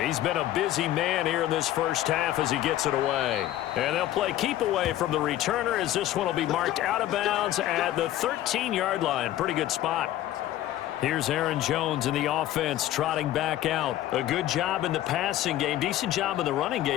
He's been a busy man here in this first half as he gets it away. And they'll play keep away from the returner as this one will be marked out of bounds at the 13-yard line. Pretty good spot. Here's Aaron Jones in the offense trotting back out. A good job in the passing game. Decent job in the running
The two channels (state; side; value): quieter; right; 13.6 dB